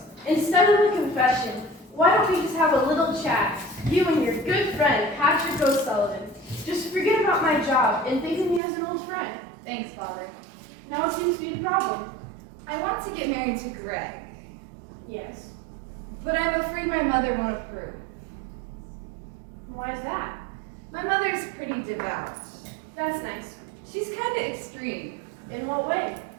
Instead of a confession, why don't we just have a little chat? You and your good friend, Patrick O'Sullivan. Just forget about my job and think of me as an old friend. Thanks, Father. Now what seems to be the problem? I want to get married to Greg, Yes. but I'm afraid my mother won't approve. Why is that? My mother's pretty devout. That's nice. She's kind of extreme. In what way?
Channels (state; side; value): drops out; left; at 8.6 s